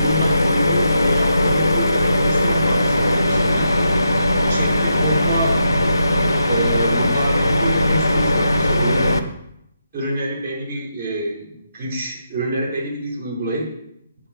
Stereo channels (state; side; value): inverted; both; correlation -0.82